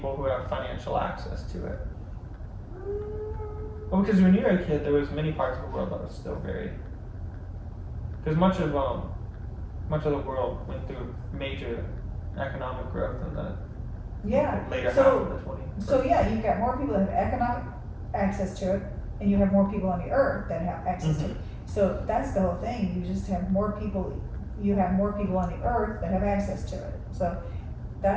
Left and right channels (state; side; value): identical; both; correlation 1.00